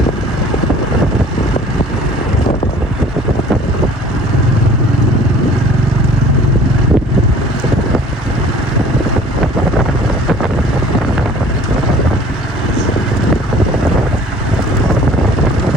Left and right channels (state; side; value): normal; both; correlation 0.49